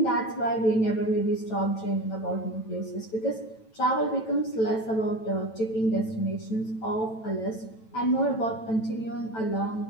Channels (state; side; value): late; right; 9.1 ms